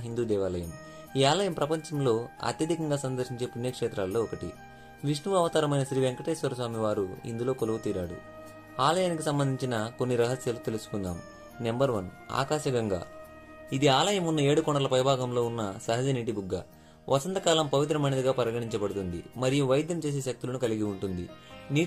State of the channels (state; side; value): identical; both; correlation 1.00